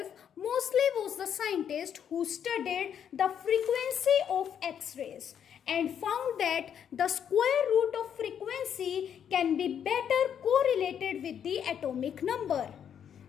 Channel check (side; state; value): right; quieter; 8.6 dB